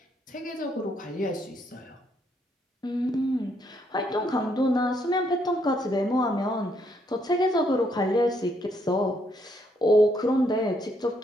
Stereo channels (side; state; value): both; normal; correlation 0.73